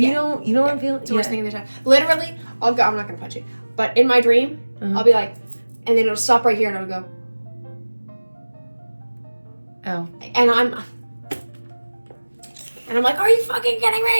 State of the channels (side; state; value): both; inverted; correlation -1.00